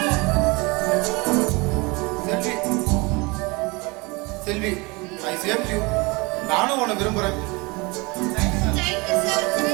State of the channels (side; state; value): left; quieter; 26.4 dB